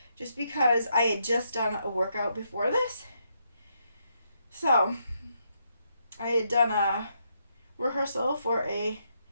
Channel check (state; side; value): inverted; both; correlation -0.78